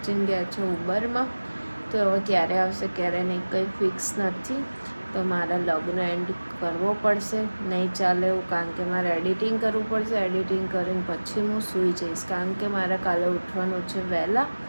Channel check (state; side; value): inverted; both; correlation -1.00